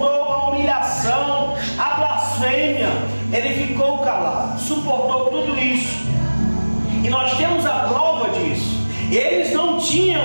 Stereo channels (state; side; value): inverted; both; correlation -1.00